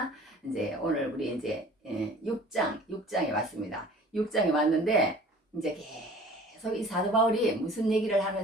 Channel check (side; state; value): both; normal; correlation 0.47